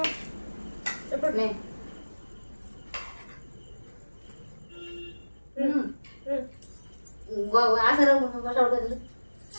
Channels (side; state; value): both; inverted; correlation -1.00